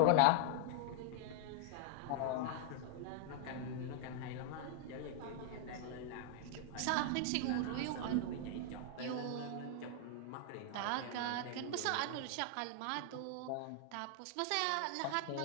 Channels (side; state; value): both; different; correlation 0.00